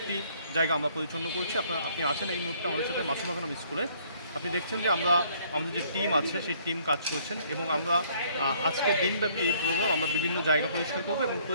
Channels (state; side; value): inverted; both; correlation -0.62